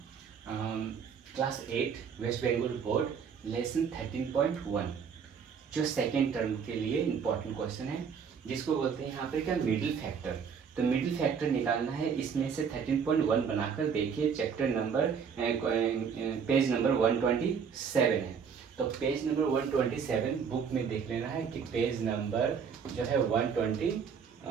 class 8 West Bengal board lesson 13.1 जो second term के लिए इम्पोर्टेंट क्वेश्चन है जिसको बोलते हैं यहाँ पे क्या मिडिल फैक्टर। तो मिडिल फैक्टर निकालना है, इसमें से 13.1 बनाकर देखिए चैप्टर नंबर पेज नंबर 127 है। तो पेज नंबर 127 बुक में देख लेना है कि पेज नंबर जो है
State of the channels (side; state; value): left; quieter; 6.7 dB